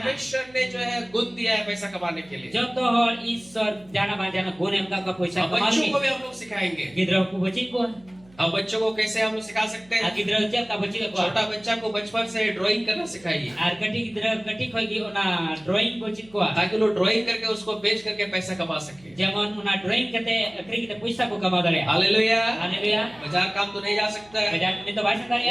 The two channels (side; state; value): right; noise; hum, 27 dB below the sound